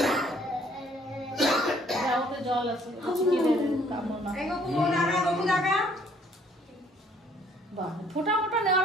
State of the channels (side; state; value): both; normal; correlation 0.62